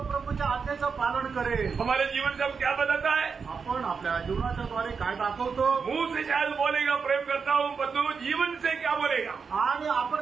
प्रभूच्या आज्ञेचं पालन करेल. हमारे जीवन से हम क्या बताता है? आपण आपल्या जीवनाच्या द्वारे काय दाखवतो? मुंह से शायद बोलेगा प्रेम करता हूँ, परंतु जीवन से क्या बोलेगा? आणि आपण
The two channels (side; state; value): left; quieter; 5.6 dB